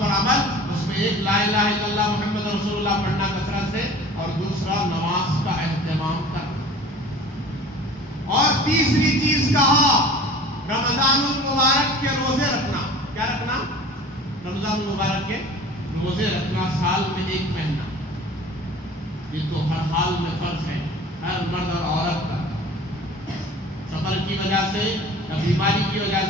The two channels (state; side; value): normal; both; correlation 0.43